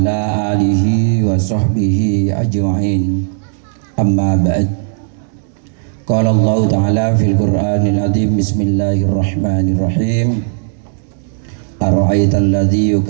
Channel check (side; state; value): left; silent; digital silence